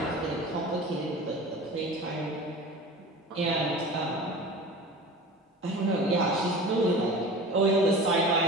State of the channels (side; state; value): both; normal; correlation 0.36